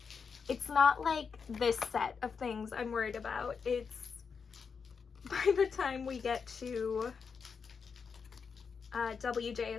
it's not like this set of things I'm worried about. It's by the time we get to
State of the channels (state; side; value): quieter; right; 5.8 dB